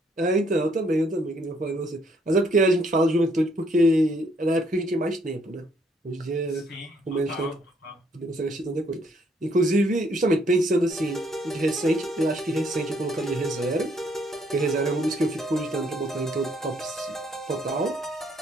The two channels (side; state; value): both; normal; correlation 0.68